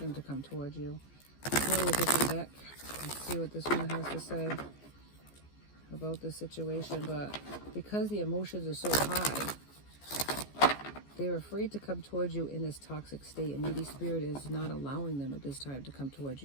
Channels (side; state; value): right; late; 14 ms